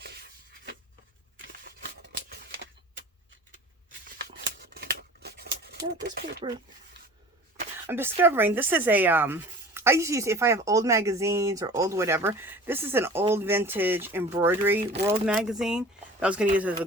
Now this paper, I'm discovering this is a I used to use, if I have old magazines or old whatever, this is an old vintage embroidery world magazine that I was going to use as a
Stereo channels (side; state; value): both; normal; correlation 0.43